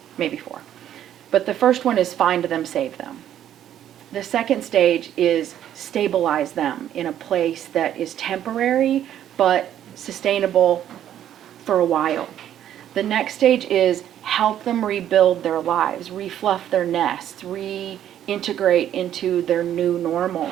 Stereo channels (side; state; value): left; quieter; 10.9 dB